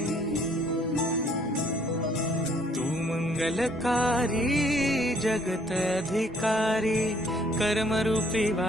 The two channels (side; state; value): both; normal; correlation 0.63